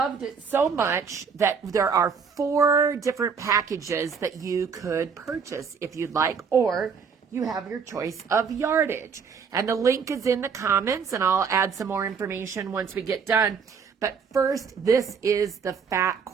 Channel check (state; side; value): quieter; left; 6.0 dB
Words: it so much that there are 4 different packages that you could purchase if you'd like, or you have your choice of yardage. And the link is in the comments, and I'll add some more information once we get done. But first, this is the fat